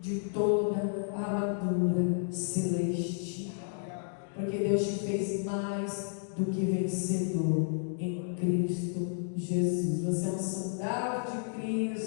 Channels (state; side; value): silent; right; digital silence